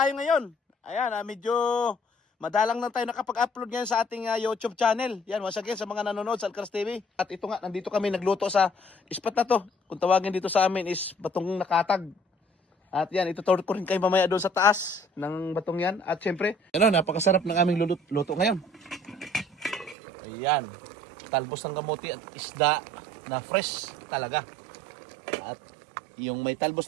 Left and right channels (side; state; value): left; drops out; at 20.0 s